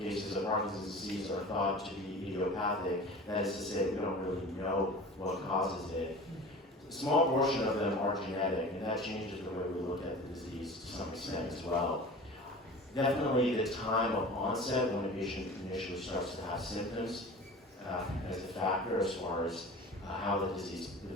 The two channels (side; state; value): both; normal; correlation 0.38